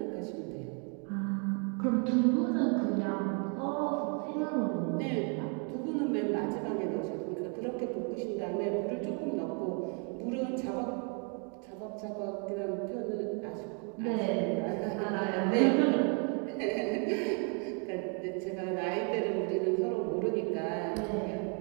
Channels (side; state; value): left; quieter; 38.5 dB